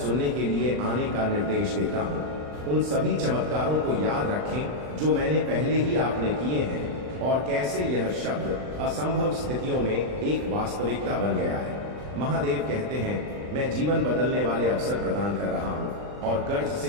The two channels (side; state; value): left; late; 39 ms